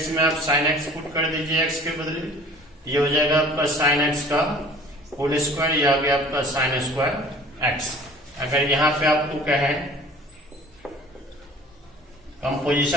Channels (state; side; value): normal; both; correlation 0.48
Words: में आप साइन एक्स पुट कर दीजिए एक्स के बदले, ये हो जाएगा आपका साइन एक्स का होल स्क्वायर, या गया आपका साइन स्क्वायर एक्स। अगर यहां पे आपको कहें